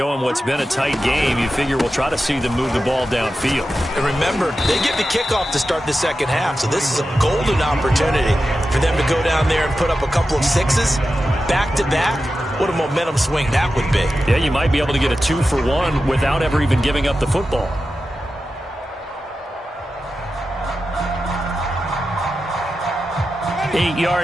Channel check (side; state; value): both; normal; correlation 0.91